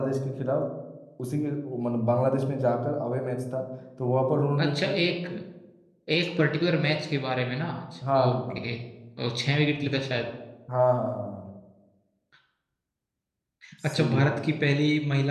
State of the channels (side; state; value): both; identical; correlation 1.00